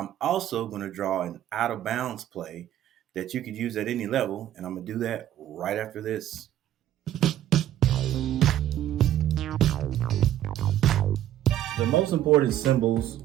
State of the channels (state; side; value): quieter; left; 12.2 dB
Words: also going to draw an out of bounds play that you could use at any level, and I'm going to do that right after this. The most important symbols